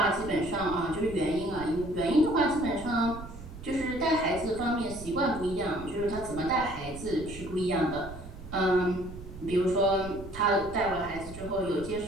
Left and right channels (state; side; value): noise; right; rumble, 13 dB below the sound